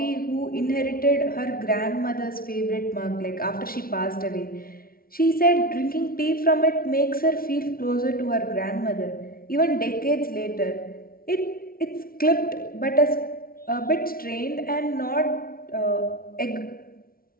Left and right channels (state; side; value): late; right; 0.43 ms